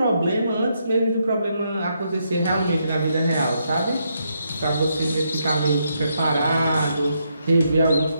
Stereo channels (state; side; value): inverted; both; correlation -0.78